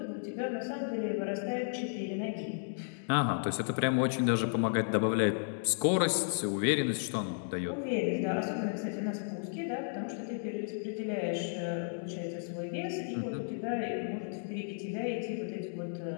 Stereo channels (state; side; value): silent; right; digital silence